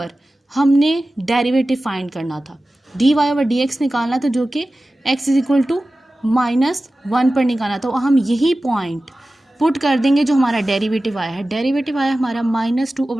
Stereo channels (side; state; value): both; normal; correlation 0.96